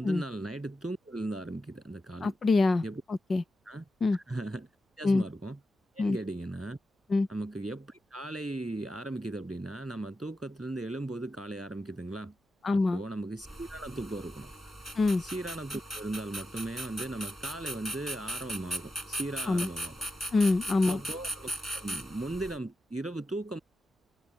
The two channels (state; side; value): normal; both; correlation 0.90